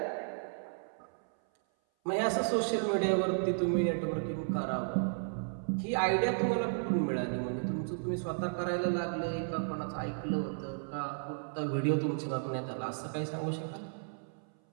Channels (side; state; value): left; silent; 55 dB below the other